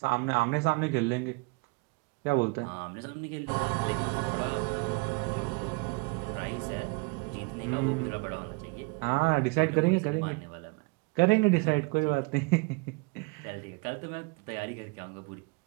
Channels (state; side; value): quieter; left; 28.9 dB